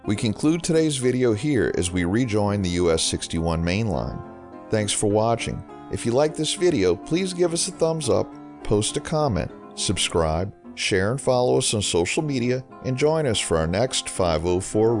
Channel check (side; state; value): both; identical; correlation 1.00